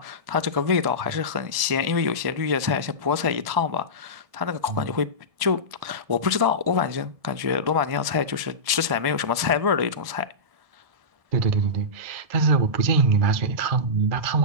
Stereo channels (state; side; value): late; left; 1.7 ms